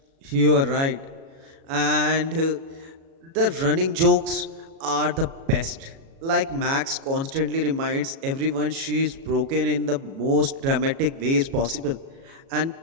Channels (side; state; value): left; late; 37 ms